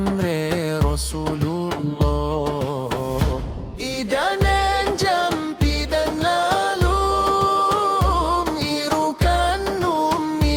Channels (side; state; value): both; identical; correlation 1.00